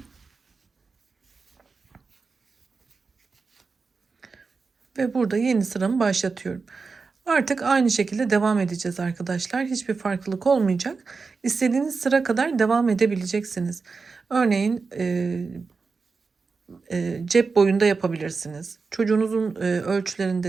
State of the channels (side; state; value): left; quieter; 4.6 dB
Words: Ve burada yeni sıramı başlatıyorum. Artık aynı şekilde devam edeceğiz arkadaşlar. Hiçbir farklılık olmayacak. İstediğiniz sıra kadar devam edebileceksiniz. Örneğin cep boyunda yapabilirsiniz. Çocuğunuzun